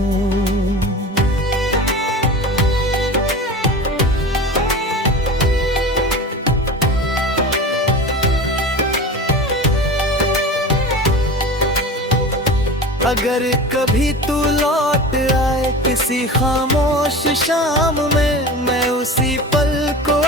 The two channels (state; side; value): normal; both; correlation 0.33